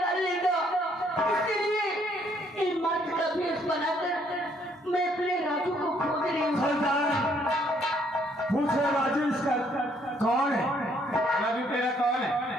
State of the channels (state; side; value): normal; both; correlation 0.67